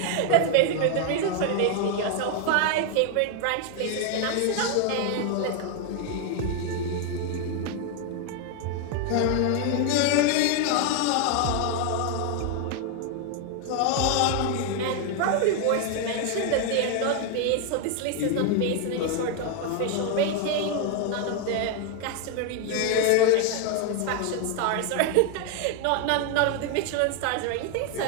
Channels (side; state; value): both; different; correlation 0.01